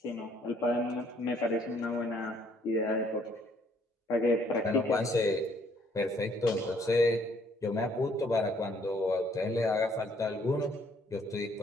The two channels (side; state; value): both; normal; correlation 0.65